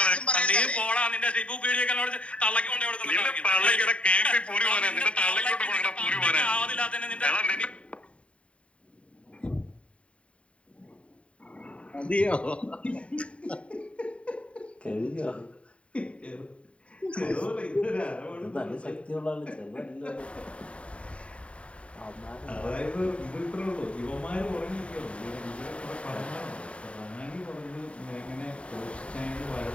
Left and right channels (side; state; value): right; late; 0.062 ms